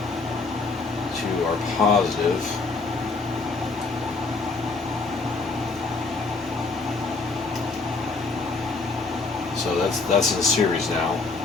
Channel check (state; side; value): quieter; right; 3.9 dB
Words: to our positive. So that's in series now.